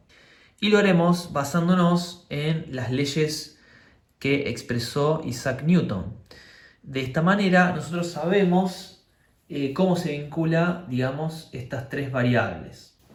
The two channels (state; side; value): identical; both; correlation 1.00